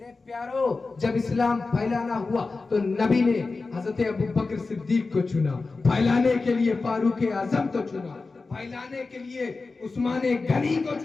प्यारो, जब इस्लाम फैलाना हुआ तो नबी ने हजरत अबू बकर सिद्दीक को चुना, फैलाने के लिए फारूक आजम को चुना, फैलाने के लिए उस्मान गनी को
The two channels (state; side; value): quieter; right; 3.9 dB